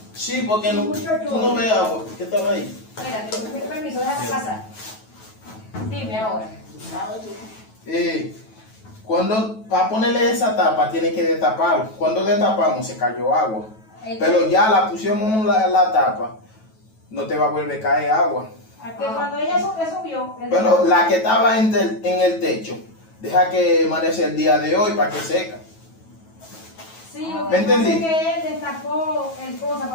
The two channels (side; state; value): right; late; 9.2 ms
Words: Sí, porque no, tú no ves agua. ¿Qué estaba ahí? Espérate, con permiso, déjame pasar. Dime ahora. Cuando, para ponerle esa tapa, tiene que destapar. Cuando destapamos, se cayó agua. Pero ya la pusimos la tapa, no te va a volver a caer agua. A que cuando ella subió. Pero la que estaba en el techo, deja que amanece el día de hoy para que seca. Sí, lo ¿Me que pasa es entendí? que él destapó el cosa